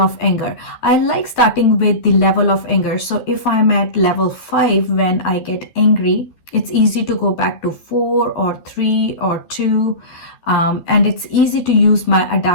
anger. I like starting with the level of anger. So if I'm at level 5 when I get angry, it's easy to go back to 4 or 3 or 2. And it's easy to use my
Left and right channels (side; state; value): right; late; 12 ms